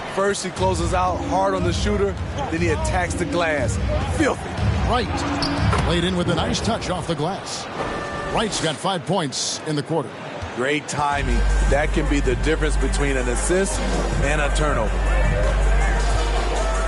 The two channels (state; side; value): identical; both; correlation 1.00